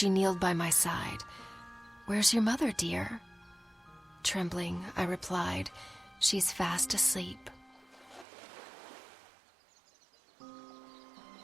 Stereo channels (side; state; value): left; drops out; at 8.2 s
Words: kneeled by my side. "Where's your mother, dear?" Trembling, I replied, "She's fast asleep."